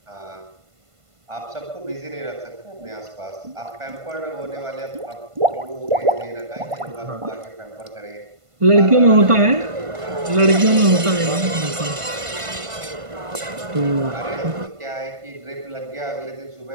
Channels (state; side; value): late; left; 1.5 ms